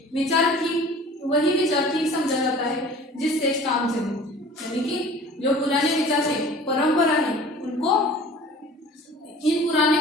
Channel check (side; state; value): both; normal; correlation 0.45